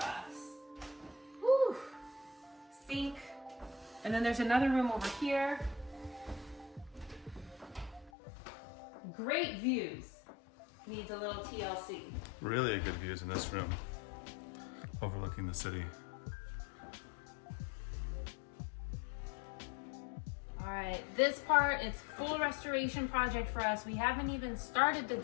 Whew. Sink. And then there's another room over here. Great views. Needs a little TLC. Really good views in this room, overlooking the city. All right, this part, it's full restoration project for us. We haven't even started the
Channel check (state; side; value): drops out; right; at 8.1 s